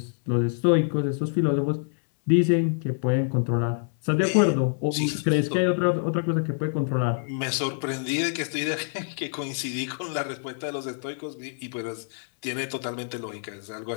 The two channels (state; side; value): silent; right; 59 dB below the other